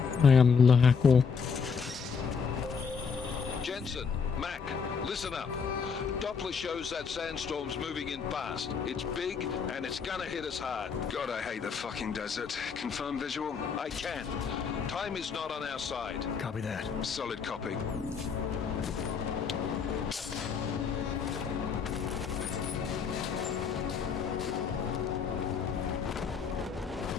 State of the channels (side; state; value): right; quieter; 5.9 dB